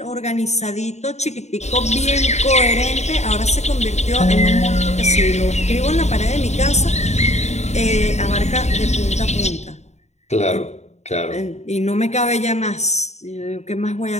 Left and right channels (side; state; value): right; late; 0.32 ms